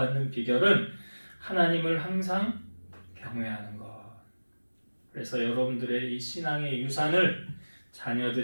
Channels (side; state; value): both; inverted; correlation -1.00